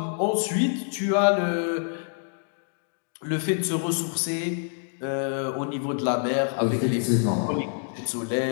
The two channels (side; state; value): right; silent; digital silence